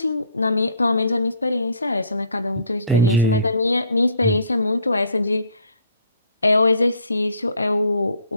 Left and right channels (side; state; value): both; inverted; correlation -0.59